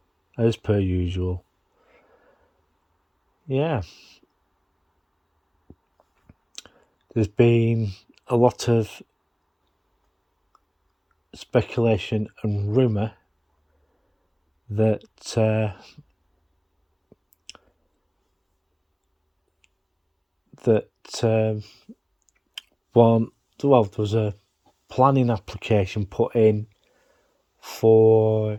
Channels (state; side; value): identical; both; correlation 1.00